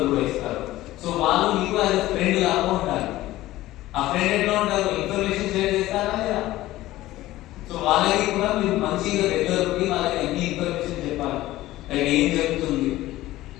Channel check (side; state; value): right; quieter; 16.3 dB